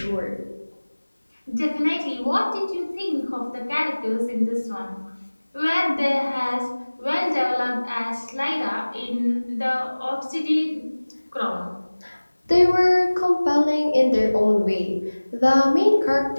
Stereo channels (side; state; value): both; inverted; correlation -1.00